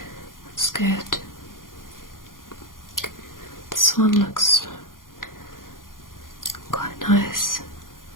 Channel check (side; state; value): right; late; 0.90 ms